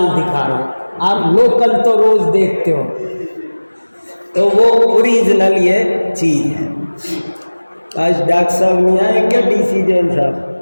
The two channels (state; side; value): inverted; both; correlation -1.00